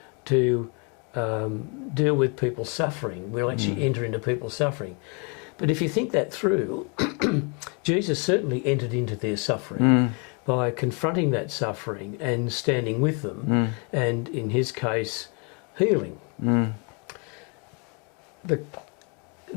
to deal with people's suffering. We'll actually enter into people's suffering. But if you think that through, Jesus certainly entered into their suffering by confronting that suffering and standing with them, and in his case, healing.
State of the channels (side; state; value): right; quieter; 34.3 dB